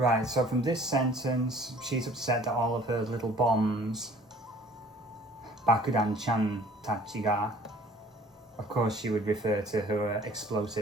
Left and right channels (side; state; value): both; normal; correlation 0.52